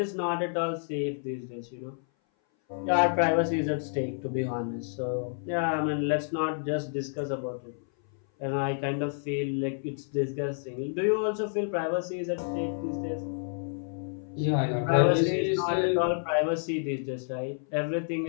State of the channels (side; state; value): right; silent; 57 dB below the other